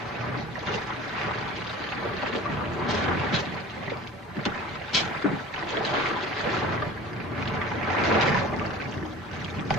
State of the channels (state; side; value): normal; both; correlation 0.40